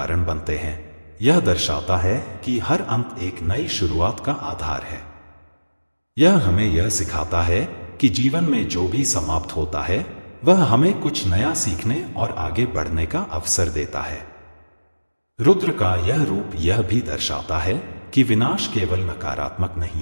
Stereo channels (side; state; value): both; inverted; correlation -1.00